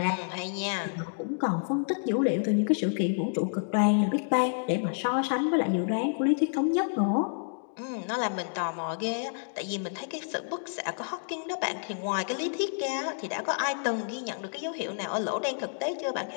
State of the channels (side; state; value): right; silent; digital silence